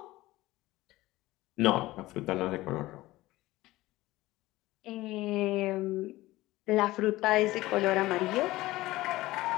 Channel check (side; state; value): right; quieter; 18.0 dB